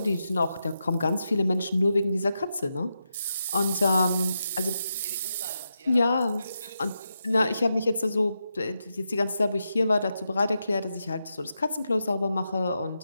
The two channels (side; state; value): both; inverted; correlation -0.87